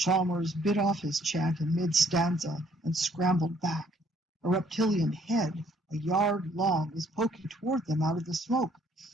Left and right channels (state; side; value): normal; both; correlation 0.64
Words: bit off his chant in mid-stanza and scrambled back. A reptilian head, a yard long, was poking toward them out of the smoke.